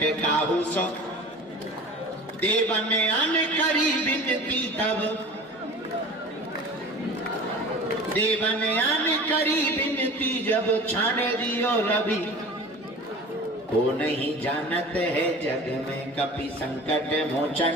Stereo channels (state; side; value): normal; both; correlation 0.39